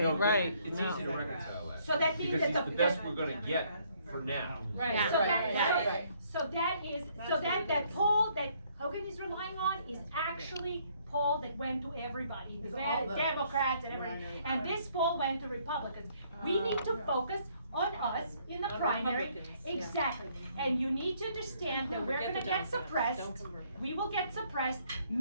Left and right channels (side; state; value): both; inverted; correlation -0.66